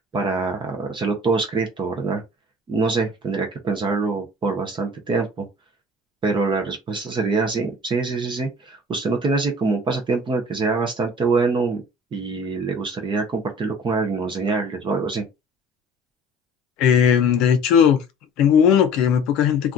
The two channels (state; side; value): normal; both; correlation 0.45